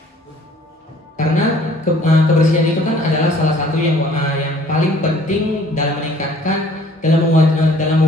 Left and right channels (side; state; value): both; normal; correlation 0.56